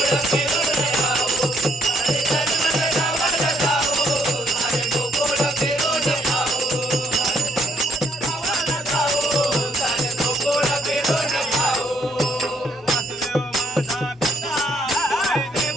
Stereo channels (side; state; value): both; normal; correlation 0.70